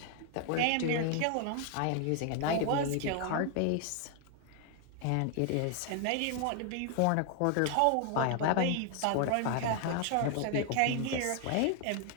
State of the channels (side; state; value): both; different; correlation 0.00